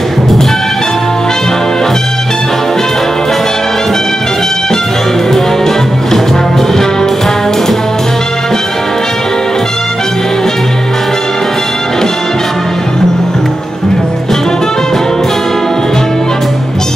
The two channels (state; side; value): normal; both; correlation 0.90